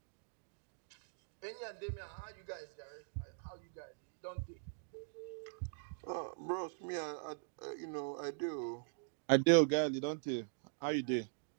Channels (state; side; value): silent; left; digital silence